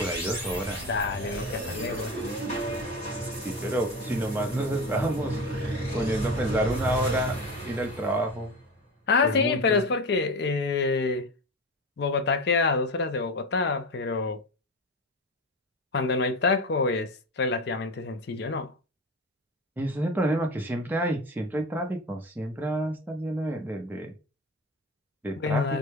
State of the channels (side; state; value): both; normal; correlation 0.25